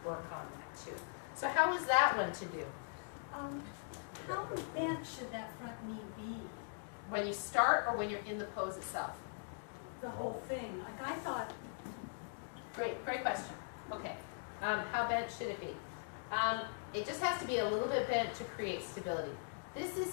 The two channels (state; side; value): silent; right; digital silence